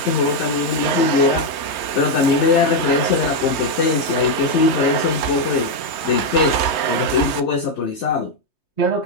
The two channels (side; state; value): right; late; 3.2 ms